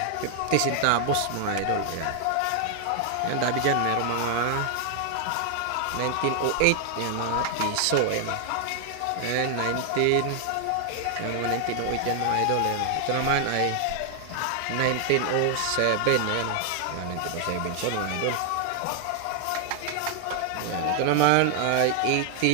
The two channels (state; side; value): different; both; correlation 0.00